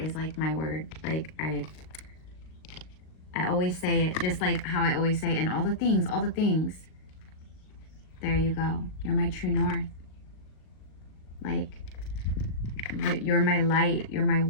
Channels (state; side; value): late; right; 38 ms